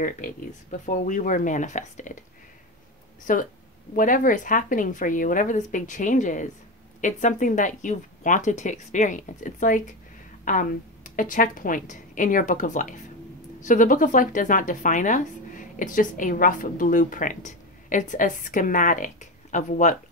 babies, before we were manifested. So whatever is happening for you, whatever this big change is, it's something that you've wanted to experience. It's like a checkpoint in your book of life. So the book of life does not define us. It's just a rough blueprint. It's a schematic of what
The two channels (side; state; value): both; normal; correlation 0.18